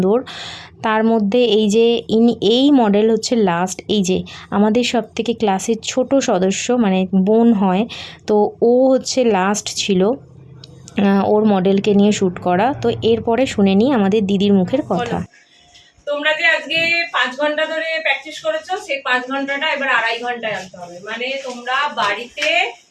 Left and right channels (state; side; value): identical; both; correlation 1.00